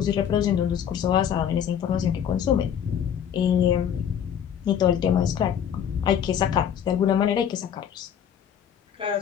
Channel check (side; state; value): right; quieter; 8.9 dB